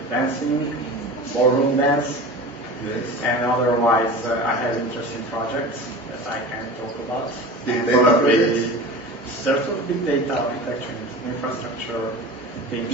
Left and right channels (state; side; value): normal; both; correlation 0.34